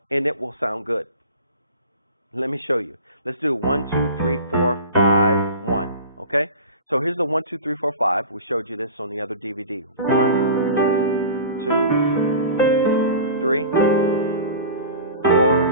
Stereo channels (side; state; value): both; inverted; correlation -0.36